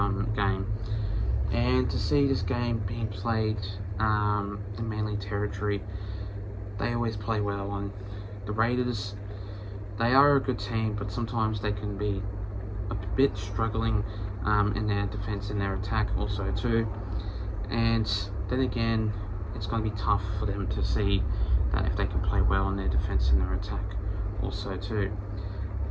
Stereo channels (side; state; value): both; identical; correlation 1.00